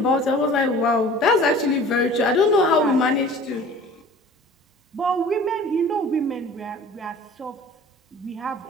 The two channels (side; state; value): both; normal; correlation 0.45